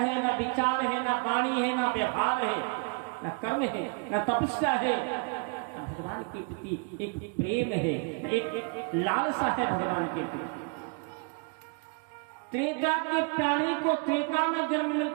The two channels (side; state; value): left; quieter; 37.8 dB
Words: ना विचार है, ना वाणी है, ना व्यवहार है, ना कर्म है, ना तपस्या है, ना भगवान के प्रति एक प्रेम है, एक लालसा है भगवान के प्रति। त्रेता के प्राणी को त्रेता में जन्म